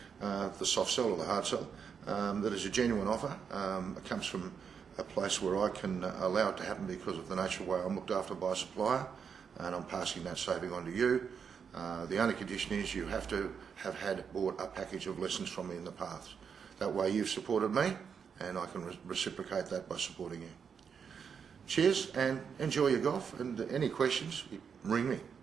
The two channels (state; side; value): quieter; left; 6.7 dB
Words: the soft sell or the hard sell, that is a genuine offer. It comes from a place where I can allow it to happen because of the nature of the way I'm looked after by a supplier, and I'm passing that saving on to you. The only condition is you have to have bought a package of lessons from me in the past. That way you've supported me, and I can reciprocate that by supporting you. Cheers, and enjoy your golf, and any questions, ring me,